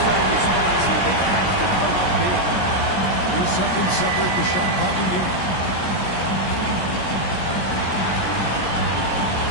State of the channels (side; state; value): right; late; 17 ms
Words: response here. They have to come up big. 3 seconds separate the shot clock and game.